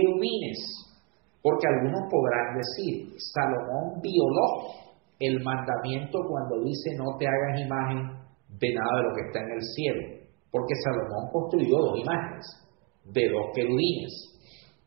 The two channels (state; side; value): quieter; left; 32.8 dB